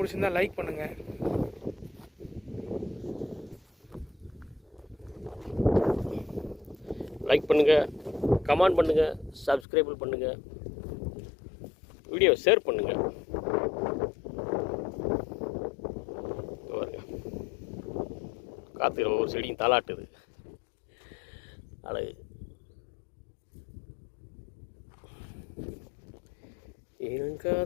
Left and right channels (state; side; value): drops out; right; at 9.7 s